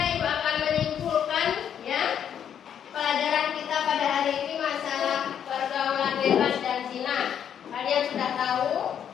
Ibu akan menyimpulkan ya pelajaran kita pada hari ini masalah pergaulan bebas dan zina. Kalian sudah tahu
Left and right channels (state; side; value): quieter; right; 8.9 dB